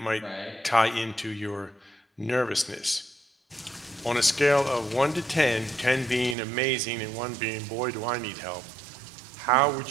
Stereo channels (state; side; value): drops out; left; at 6.4 s